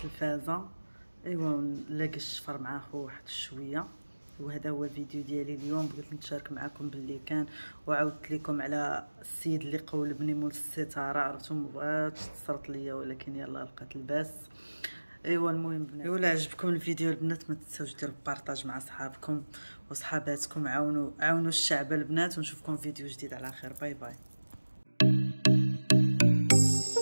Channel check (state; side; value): inverted; both; correlation -1.00